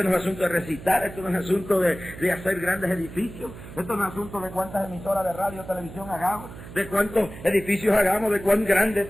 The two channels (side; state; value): right; noise; hum, 14 dB below the sound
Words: no es asunto de recitar, esto no es asunto de hacer grandes edificios, esto no es asunto de cuántas emisoras de radio o televisión hagamos, de cuántos edificios hagamos, de cuán grandes